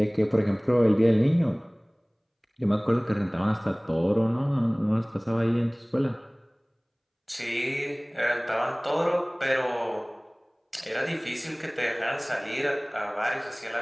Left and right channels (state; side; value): identical; both; correlation 1.00